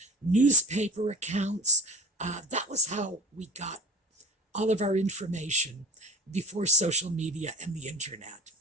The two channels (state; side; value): normal; both; correlation 0.40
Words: newspaper accounts. That was how we got all of our information before social media and the internet.